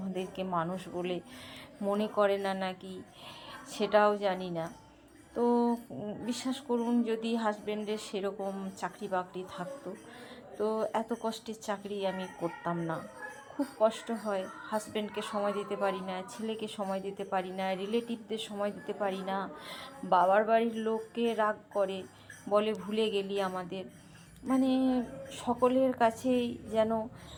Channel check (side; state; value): both; identical; correlation 1.00